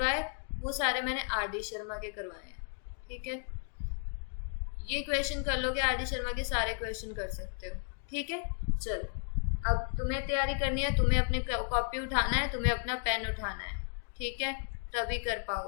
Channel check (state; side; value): silent; right; 55 dB below the other